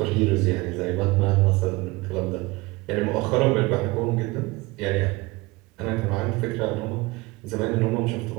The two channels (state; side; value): quieter; left; 22.6 dB